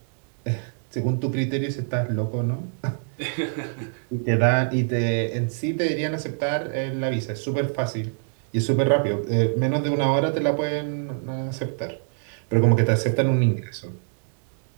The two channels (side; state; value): left; silent; digital silence